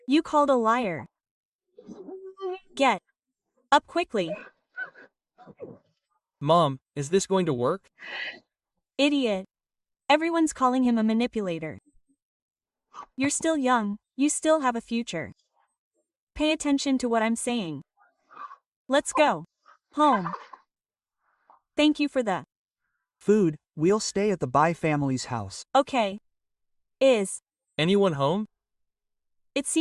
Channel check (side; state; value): both; identical; correlation 1.00